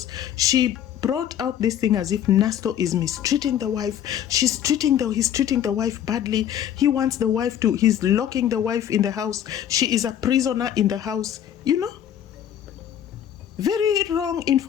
she brought out this thing as if Nasto is mistreating the wife. He's treating the wife badly. He wants the wife to, he's locking the wife in the house. She is a prisoner in the house. You know, very wrong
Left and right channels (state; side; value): quieter; right; 10.2 dB